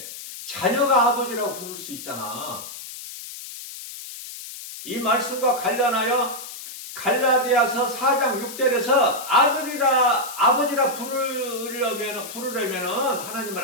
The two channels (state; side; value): noise; left; hiss, 11 dB below the sound